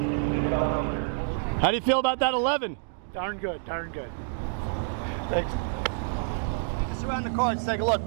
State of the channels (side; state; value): left; silent; digital silence